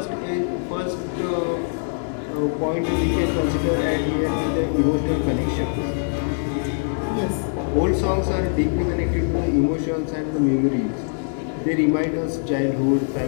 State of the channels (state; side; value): silent; right; digital silence